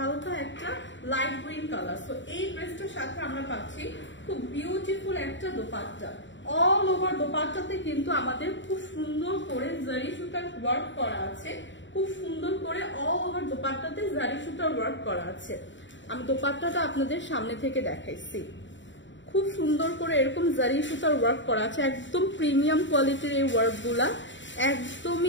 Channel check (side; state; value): right; late; 0.54 ms